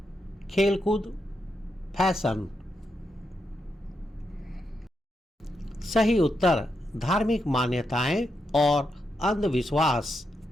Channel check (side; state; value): both; normal; correlation 0.84